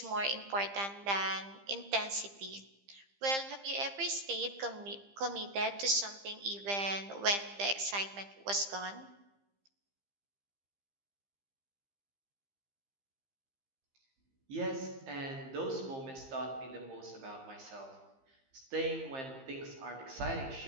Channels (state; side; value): late; left; 15 ms